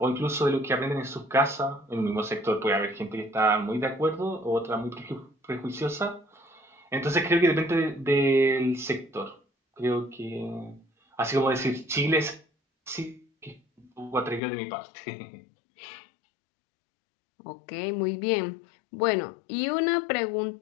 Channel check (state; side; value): drops out; right; at 14.4 s